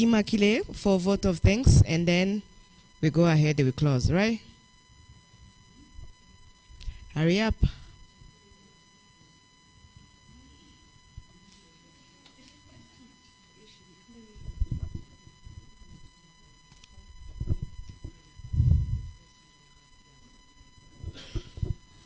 for a vote of thanks, and then we go ahead and we close, right? Hurry up.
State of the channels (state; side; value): identical; both; correlation 1.00